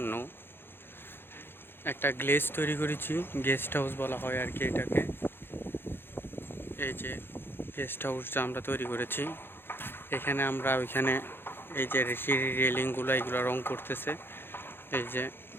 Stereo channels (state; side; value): late; right; 0.10 ms